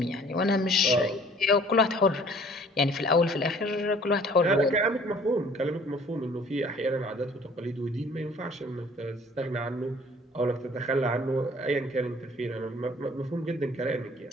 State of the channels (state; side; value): normal; both; correlation 0.54